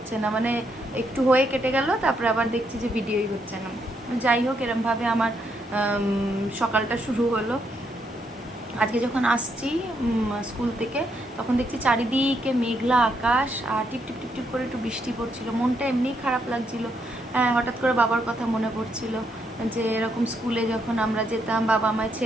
না, মানে একটু হয়ে কেটে গেল, তারপরে আবার দেখছি যে ভিডিওই হচ্ছে না। যাই হোক, এরমভাবে আমার সকালটা শুরু হলো। আজকে যখন আসছি স্কুল থেকে, তখন দেখছি চারিদিকে মেঘলা আকাশ, আর টিপ টিপ টিপ টিপ করে একটু বৃষ্টি পড়ছিল। মনটা এমনিই খারাপ লাগছিল। হঠাৎ করে বাবার কথা মনে পড়ছিল যে এরকম স্কুলে যখন আমরা যেতাম, বাবা আমায়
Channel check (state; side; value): normal; both; correlation 0.77